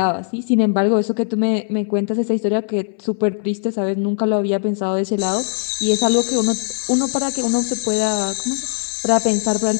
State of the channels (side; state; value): right; silent; 63 dB below the other